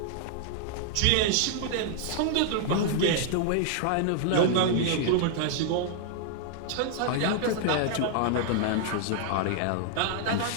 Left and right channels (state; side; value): different; both; correlation -0.01